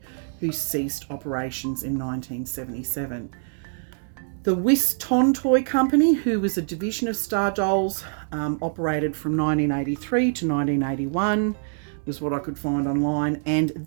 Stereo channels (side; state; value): left; silent; 62 dB below the other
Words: who ceased operations in 1977. The Whiston Toy Company, who was a division of Star Dolls, operated from 1983 to 1981, was what I could find online. And